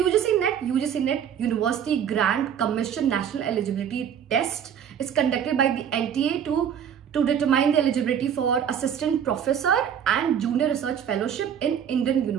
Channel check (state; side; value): quieter; left; 8.5 dB